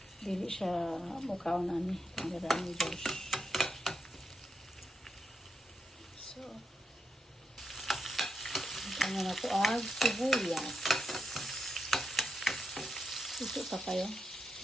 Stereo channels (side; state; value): both; normal; correlation 0.84